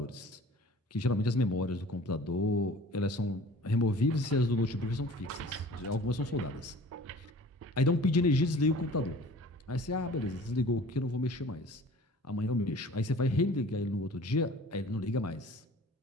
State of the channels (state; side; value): normal; both; correlation 0.46